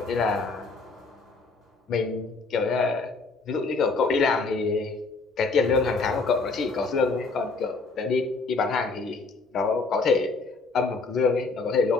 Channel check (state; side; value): quieter; right; 3.9 dB